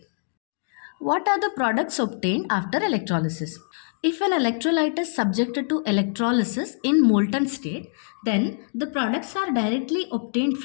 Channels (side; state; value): right; silent; digital silence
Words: What are the products obtained after electrolysis? If an electrolyte is subjected to electrolysis in molten state, then the products are directly obtained